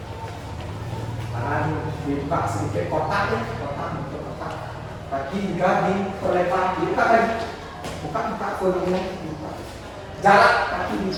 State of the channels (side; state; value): both; identical; correlation 1.00